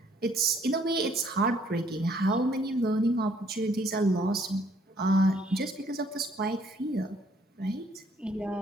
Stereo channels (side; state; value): both; normal; correlation 0.64